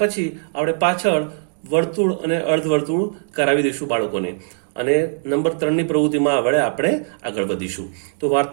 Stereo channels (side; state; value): left; silent; digital silence